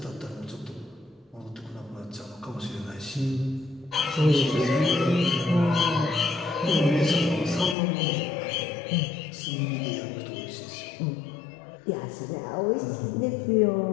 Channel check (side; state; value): right; drops out; at 7.8 s